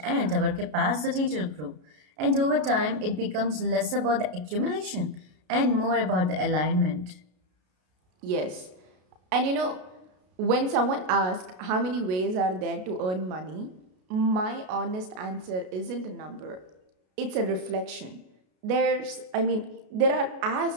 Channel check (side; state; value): left; late; 33 ms